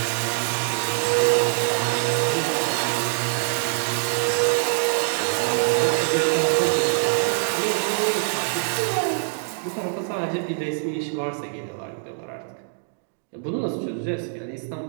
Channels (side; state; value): left; silent; digital silence